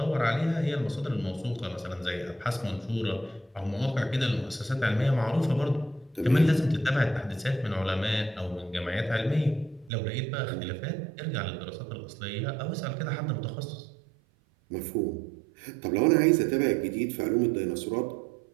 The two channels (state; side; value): drops out; left; at 9.9 s